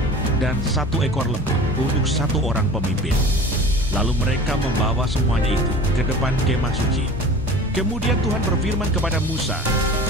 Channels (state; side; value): normal; both; correlation 0.40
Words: dan 1 ekor lembu untuk 1 orang pemimpin. Lalu mereka membawa semuanya itu ke depan kemah suci. Kemudian Tuhan berfirman kepada Musa,